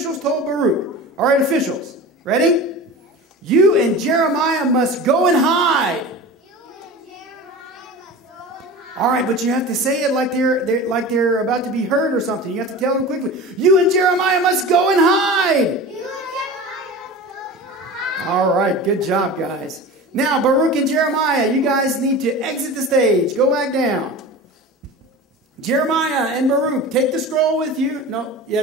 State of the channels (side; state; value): both; normal; correlation 0.33